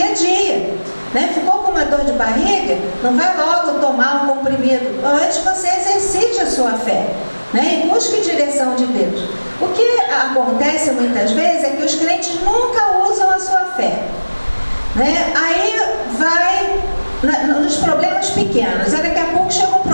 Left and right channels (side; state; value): both; inverted; correlation -1.00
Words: a dia, né? Ficou com uma dor de barriga? Não vai logo tomar um comprimido. Antes você exercite a sua fé, né? E busque direção de Deus. O que acontece muitas vezes é que os crentes nunca usam a sua fé, né? Aí vai nos problemas pequenos, aí daqui a pouco chega um